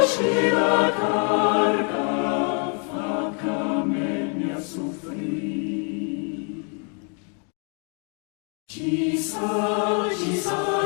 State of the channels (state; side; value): quieter; right; 39.7 dB